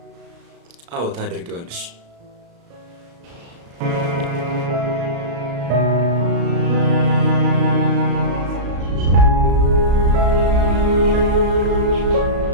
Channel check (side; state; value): left; late; 35 ms